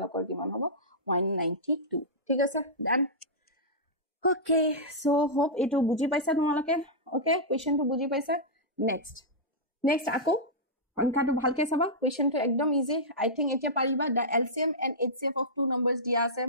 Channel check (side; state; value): both; normal; correlation -0.12